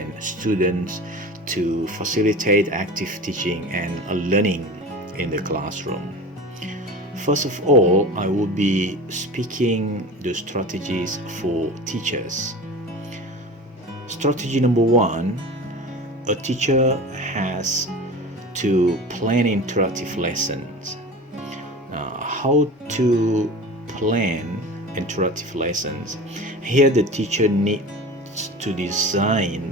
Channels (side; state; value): both; normal; correlation 0.34